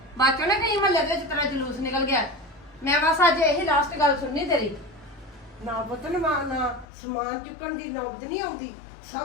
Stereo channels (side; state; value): right; drops out; at 6.9 s